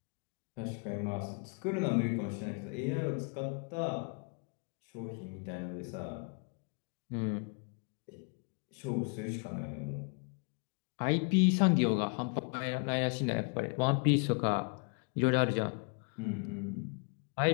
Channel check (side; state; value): right; quieter; 38.1 dB